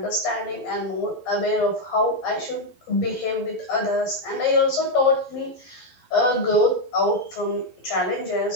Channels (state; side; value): late; right; 12 ms